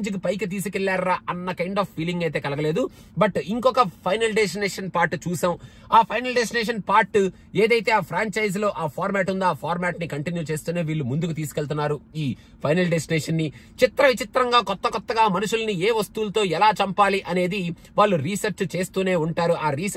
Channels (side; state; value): both; identical; correlation 1.00